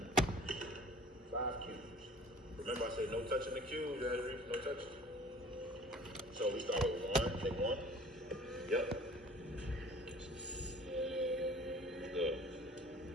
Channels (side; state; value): both; normal; correlation 0.47